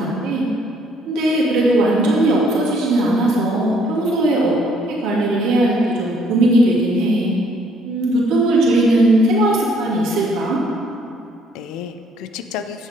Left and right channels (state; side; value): normal; both; correlation 0.64